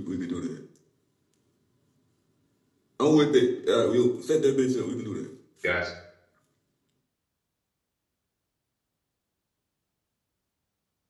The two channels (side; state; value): both; identical; correlation 1.00